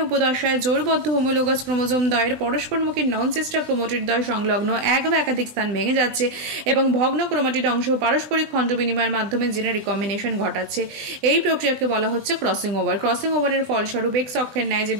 উপদশায় জোড়বদ্ধ হোমোলোগাস ক্রোমোজোম দ্বয়ের পরস্পরমুখী নন সিস্টার ক্রোমাটিড দ্বয় সংলগ্ন এক বা একাধিক স্থান ভেঙে যাচ্ছে এবং ভগ্ন ক্রোমাটিড অংশ পারস্পরিক খণ্ড বিনিময়ের মাধ্যমে জিনের রিকম্বিনেশন ঘটাচ্ছে। এই প্রক্রিয়াকে বলা হচ্ছে ক্রসিং ওভার। ক্রসিং ওভারের ফলস্বরূপ এক্স অক্ষের ন্যায় যে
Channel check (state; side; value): late; left; 20 ms